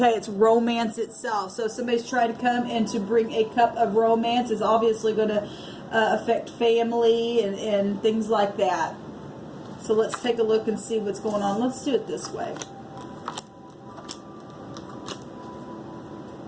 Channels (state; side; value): identical; both; correlation 1.00